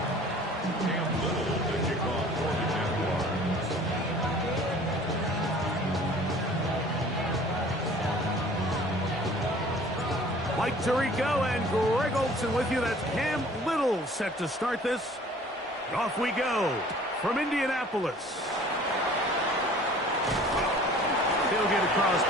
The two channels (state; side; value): normal; both; correlation 0.50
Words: Mike Tirico and Greg Olson with you. That's Cam Little set to start this. Off we go from Indianapolis. They'll get across